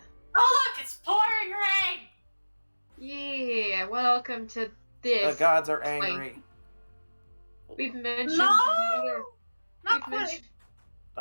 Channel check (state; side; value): inverted; both; correlation -1.00